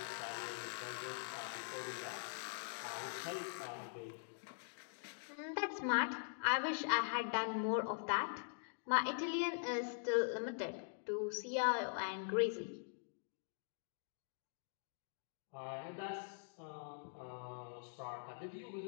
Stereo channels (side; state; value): right; silent; digital silence